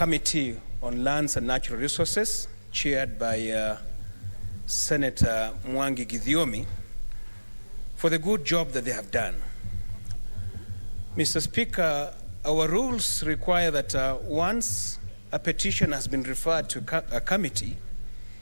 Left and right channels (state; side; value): inverted; both; correlation -1.00